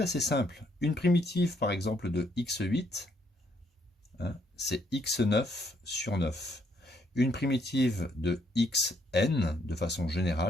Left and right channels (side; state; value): both; normal; correlation 0.71